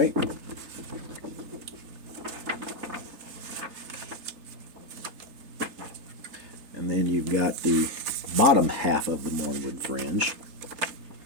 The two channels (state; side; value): late; left; 3.3 ms